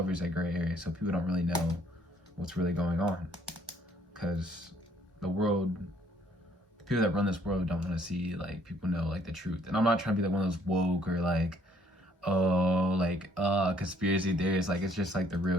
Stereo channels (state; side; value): normal; both; correlation 0.63